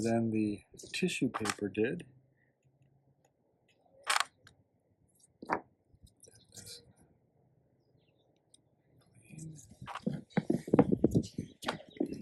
the tissue paper did.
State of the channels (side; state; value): both; identical; correlation 1.00